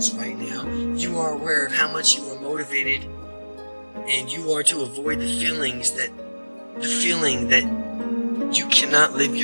right now, you are aware of how much you are motivated, and you are to avoid the feeling that you cannot live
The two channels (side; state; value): both; inverted; correlation -1.00